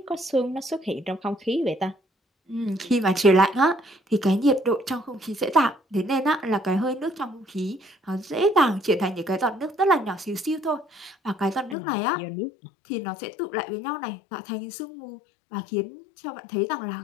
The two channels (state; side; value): drops out; right; at 11.8 s